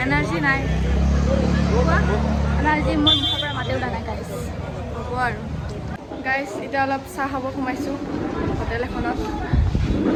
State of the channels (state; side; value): identical; both; correlation 1.00